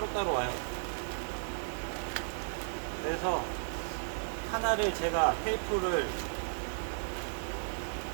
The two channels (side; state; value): left; silent; digital silence